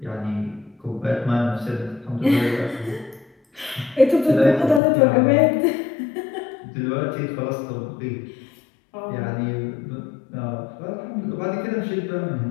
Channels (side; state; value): right; drops out; at 4.8 s